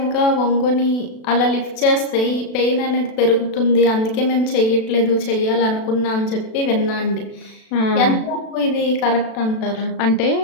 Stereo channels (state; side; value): late; right; 36 ms